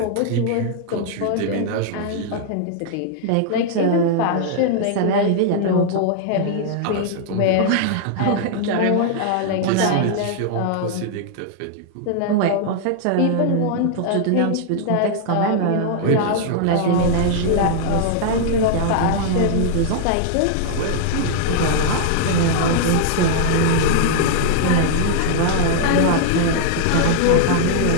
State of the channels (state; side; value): different; both; correlation -0.01